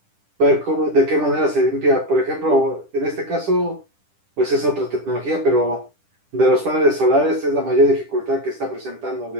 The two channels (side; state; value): left; late; 10 ms